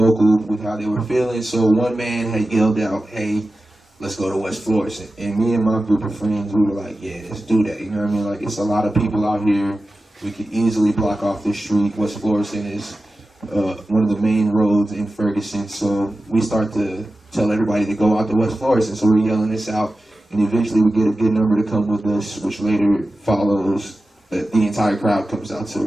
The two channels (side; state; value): both; normal; correlation 0.94